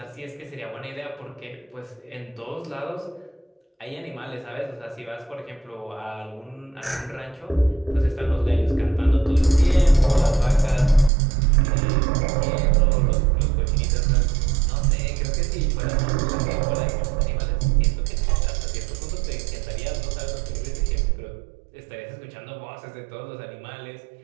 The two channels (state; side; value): drops out; left; at 11.1 s